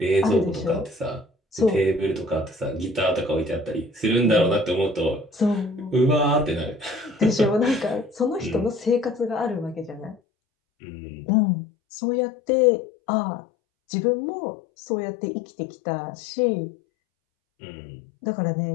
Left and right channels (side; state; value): right; drops out; at 10.2 s